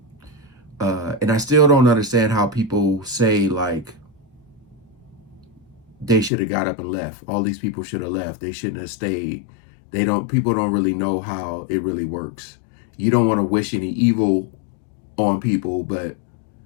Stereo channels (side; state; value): right; drops out; at 6.3 s